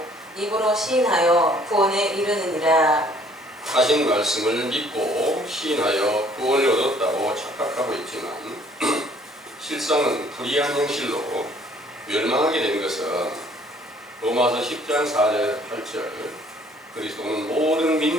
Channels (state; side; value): normal; both; correlation 0.59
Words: 입으로 시인하여 구원에 이르느니라. 하신 말씀을 믿고 시인하여 구원을 얻었다고 착각하고 있지만 실상은 불의한 행실로 멸망하게 된 것은 로마서 10장 4절 8절 그리스도는 모든